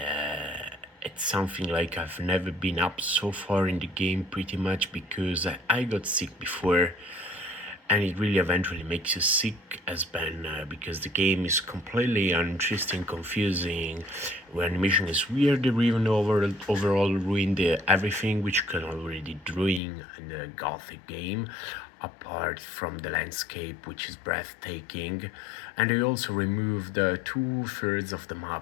it's something like I've never been up so far in the game pretty much because I got sick before, and it really eventually makes you sick as Ben because the game is completely uninteresting, confusing, where animation is weird, or even overall ruin everything which you can already doing in the Gothic game, apart from the landscape which is breathtaking. And they also removed 2/3 of the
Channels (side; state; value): right; drops out; at 19.8 s